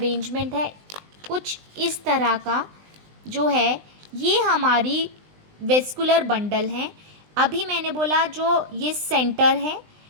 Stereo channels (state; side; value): late; left; 20 ms